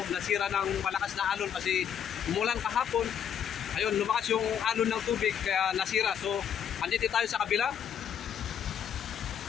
malakas na alon kasi umulan kahapon. Ayun, lumakas yung alon ng tubig kaya nasira. So andito tayo sa kabila.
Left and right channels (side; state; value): right; quieter; 8.5 dB